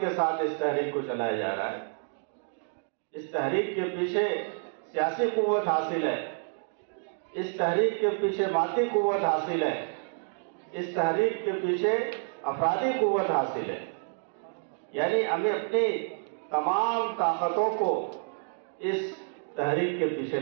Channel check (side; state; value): left; silent; 58 dB below the other